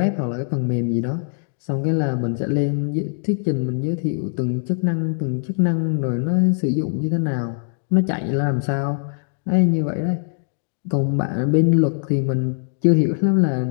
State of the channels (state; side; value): silent; right; digital silence